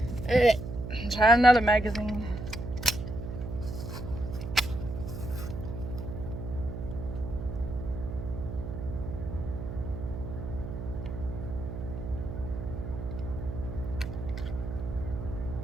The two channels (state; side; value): noise; right; hum, 6 dB below the sound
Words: Alright, try another magazine.